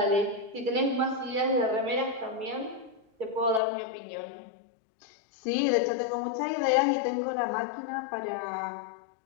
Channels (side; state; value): right; drops out; at 3.6 s